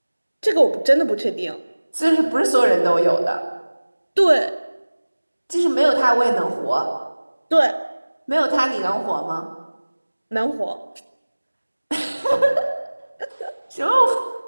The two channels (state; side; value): inverted; both; correlation -1.00